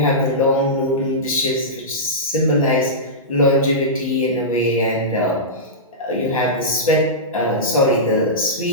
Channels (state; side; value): normal; both; correlation -0.15